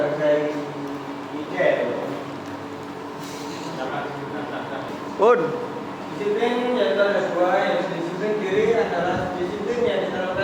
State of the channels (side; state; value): both; identical; correlation 1.00